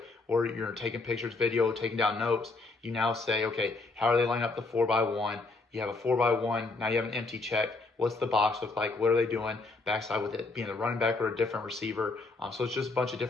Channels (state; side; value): quieter; right; 3.5 dB